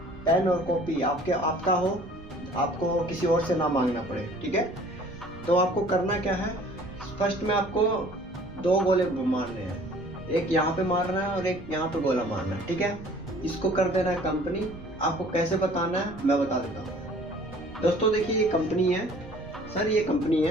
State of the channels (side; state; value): right; noise; rumble, 18 dB below the sound